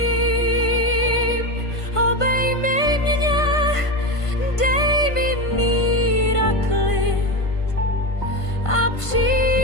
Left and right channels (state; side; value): late; right; 1.5 ms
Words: obejmi mě, dej mi mír a klid a